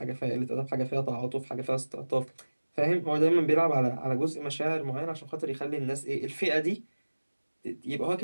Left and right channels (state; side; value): inverted; both; correlation -1.00